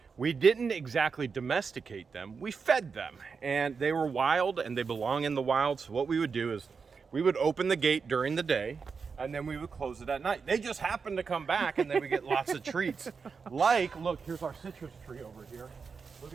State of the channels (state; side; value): quieter; left; 5.4 dB